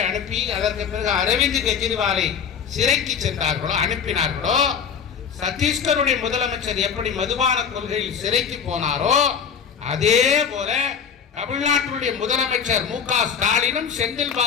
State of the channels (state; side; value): quieter; right; 7.1 dB